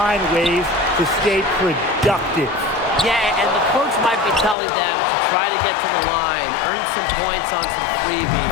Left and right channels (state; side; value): drops out; right; at 4.5 s